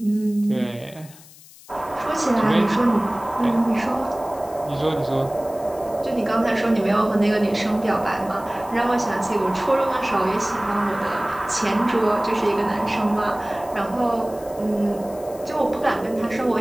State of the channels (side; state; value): left; noise; hiss, 22 dB below the sound